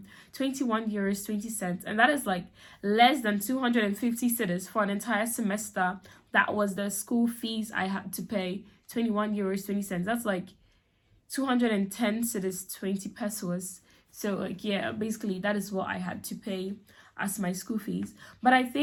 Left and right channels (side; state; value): both; identical; correlation 1.00